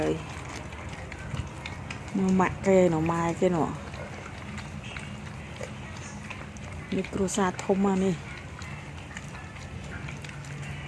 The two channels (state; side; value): identical; both; correlation 1.00